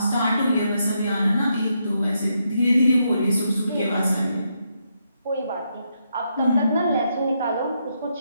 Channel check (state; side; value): inverted; both; correlation -0.79